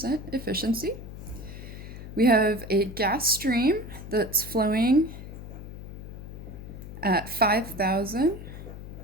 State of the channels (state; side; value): noise; left; hum, 11 dB below the sound